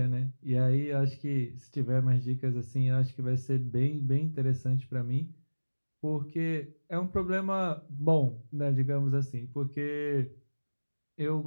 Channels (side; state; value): both; inverted; correlation -1.00